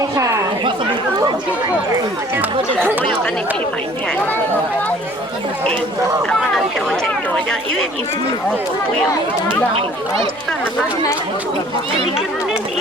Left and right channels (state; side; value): noise; left; hum, 26 dB below the sound